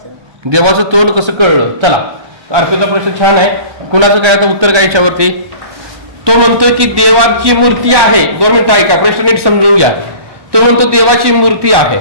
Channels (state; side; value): late; left; 1.2 ms